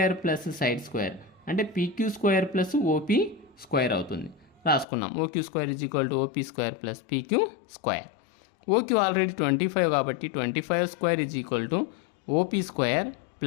plus side square, అంటే PQ square plus OP square అవుతుంది. రాసుకున్నాం, OQ square is equal to OP square plus PQ square. OQ already 25 కాబట్టి 25 square is equal to OP square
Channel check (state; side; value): drops out; right; at 4.9 s